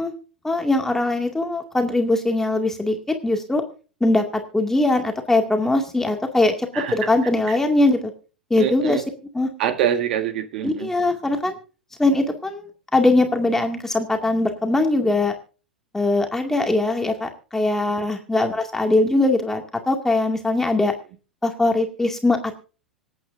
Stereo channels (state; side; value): normal; both; correlation 0.75